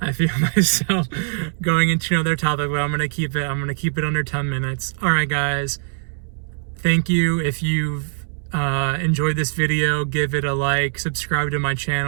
feel myself going into another topic, but I'm gonna keep it under 10 minutes. All right, guys. Thank you. If you've enjoyed this video, give it a like, subscribe to my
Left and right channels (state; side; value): silent; left; digital silence